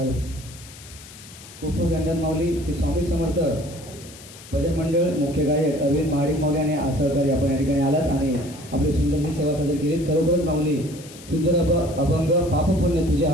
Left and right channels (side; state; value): left; noise; hiss, 18 dB below the sound